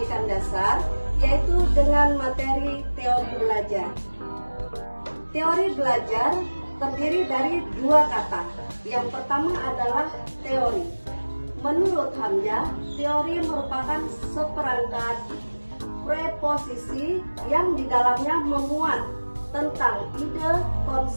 dasar, yaitu dengan materi teori belajar. Teori belajar terdiri dari dua kata. Yang pertama adalah teori. Menurut Hamzah, teori merupakan seperangkat preposisi yang di dalamnya memuat tentang ide,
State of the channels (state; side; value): inverted; both; correlation -1.00